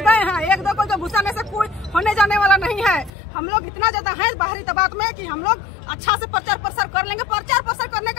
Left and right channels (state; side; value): drops out; right; at 3.1 s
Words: गए हैं, एक दो को जो घुसाने से कोई होने जाने वाला नहीं है। हम लोग इतना ज्यादा है बाहरी दबाव में कि हम लोग अच्छा से प्रचार प्रसार कर लेंगे। प्रचार प्रसार करने